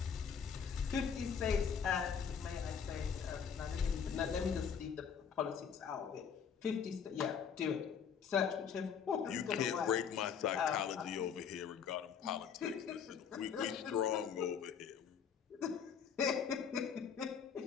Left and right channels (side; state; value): right; quieter; 7.2 dB